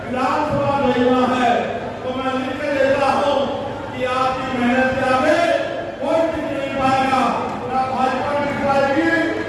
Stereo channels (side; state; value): both; identical; correlation 1.00